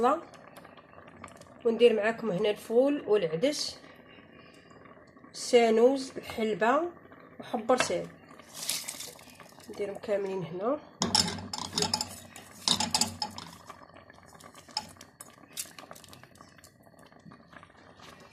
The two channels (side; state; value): both; identical; correlation 1.00